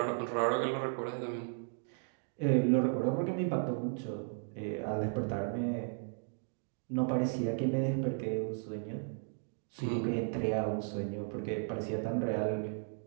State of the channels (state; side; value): silent; left; 54 dB below the other